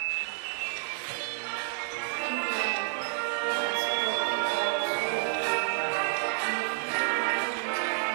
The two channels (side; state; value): left; silent; 57 dB below the other